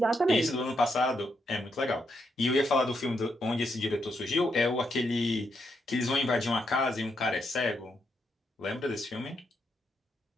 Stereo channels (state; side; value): normal; both; correlation 0.80